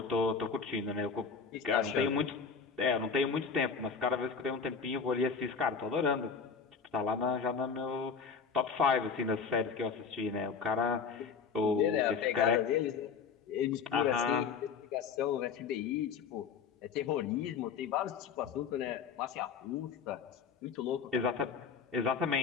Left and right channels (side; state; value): right; quieter; 5.9 dB